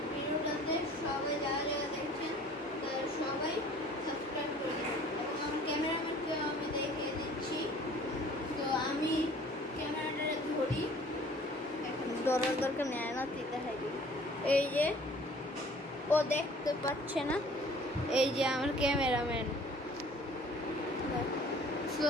ভিডিওটাতে সবাই যারা যারা দেখছেন তারা সবাই সাবস্ক্রাইব করে দেবেন। এবং আমার ক্যামেরাম্যানকে আমি দেখিয়ে দিচ্ছি। তো আমি ক্যামেরাটা ধরি, এখন ধরার দরকার নেয় না, দেখাই দিই। এই যে ও দেখতে পাচ্ছে না, এই যে আমার ক্যামেরাম্যান।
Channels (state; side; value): normal; both; correlation 0.51